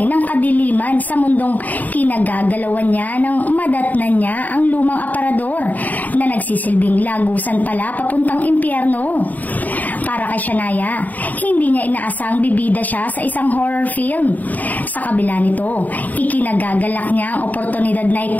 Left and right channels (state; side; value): late; right; 0.080 ms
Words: ng kadiliman sa mundong kinagagalawan niya ng madatnan niya ang lumang aparador na nagsisilbing lagusan pala papuntang impyerno. Para kay Shania, hindi niya inaasang bibida siya sa isang horror film. Sa kabila nito, ikinagagalak niya ang oportunidad na